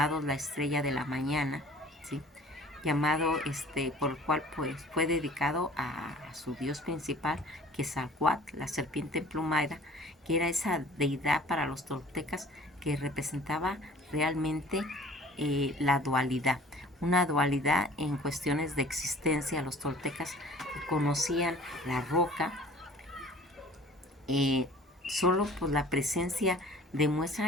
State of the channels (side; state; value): both; normal; correlation 0.48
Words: la Estrella de la Mañana, ¿sí? Llamado por el cual pues fue dedicado a su dios principal, Quetzalcóatl, la serpiente emplumada, que era esa deidad para los toltecas que representaba realmente la dualidad, una dualidad en cuestiones de existencia. Los toltecas conocían la roca, solo por la presencia